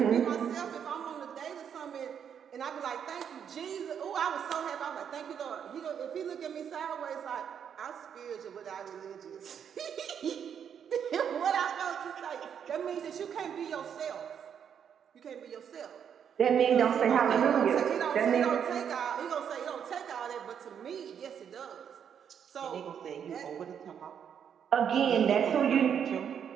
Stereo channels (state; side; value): quieter; left; 8.1 dB